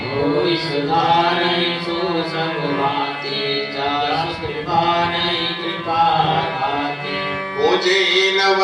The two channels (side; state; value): both; identical; correlation 1.00